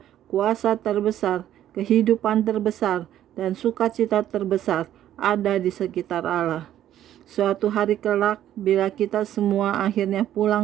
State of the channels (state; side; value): quieter; left; 11.8 dB